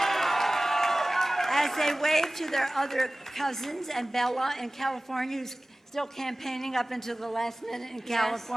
as they wave to their other cousins and Bella in California, who's still campaigning up until the last minute in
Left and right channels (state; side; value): normal; both; correlation 0.98